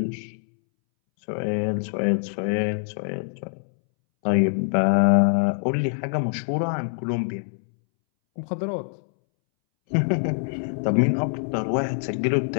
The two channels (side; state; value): right; silent; 62 dB below the other